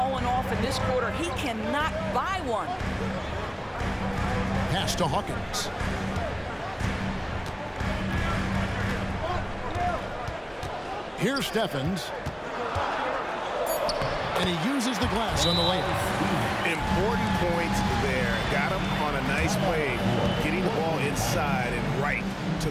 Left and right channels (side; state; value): both; identical; correlation 1.00